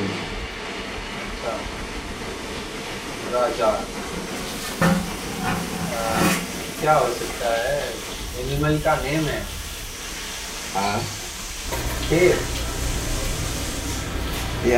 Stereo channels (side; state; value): both; identical; correlation 1.00